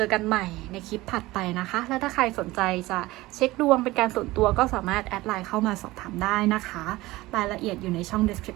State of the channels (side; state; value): left; quieter; 19.0 dB